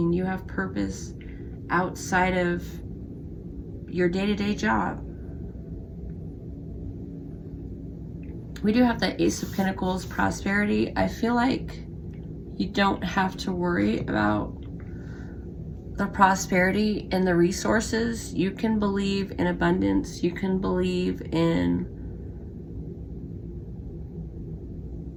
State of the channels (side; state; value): both; identical; correlation 1.00